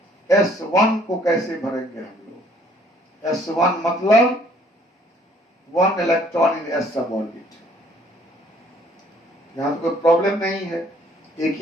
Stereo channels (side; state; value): both; normal; correlation 0.61